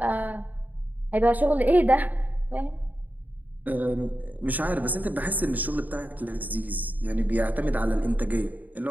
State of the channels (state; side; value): late; left; 0.081 ms